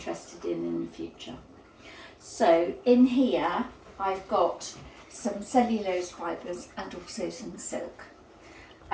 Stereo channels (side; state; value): both; identical; correlation 1.00